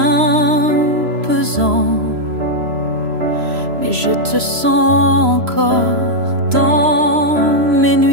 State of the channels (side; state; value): left; late; 3.0 ms